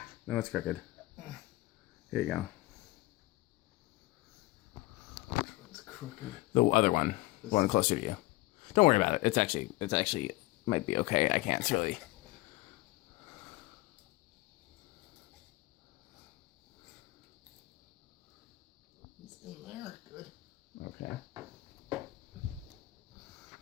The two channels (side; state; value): right; quieter; 19.9 dB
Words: No, it's crooked. Here you go. Which one's crooked? The other one. The one closer to you. Don't worry about it. It's actually might be okay. I can't really. It's in there. Good. Okay.